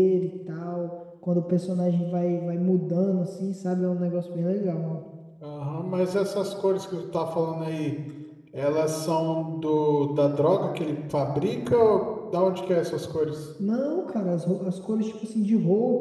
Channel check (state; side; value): identical; both; correlation 1.00